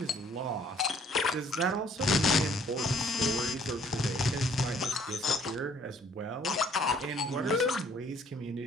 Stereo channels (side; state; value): both; normal; correlation 0.60